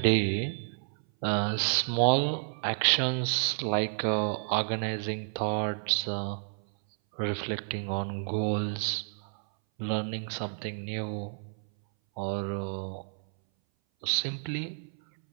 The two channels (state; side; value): silent; left; 58 dB below the other